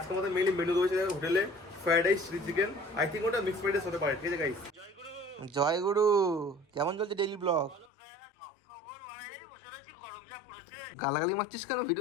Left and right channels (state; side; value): drops out; right; at 7.9 s